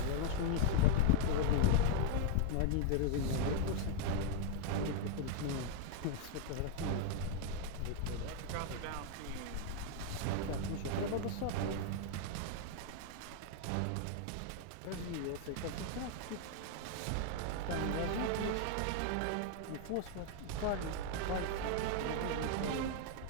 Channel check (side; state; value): both; different; correlation 0.00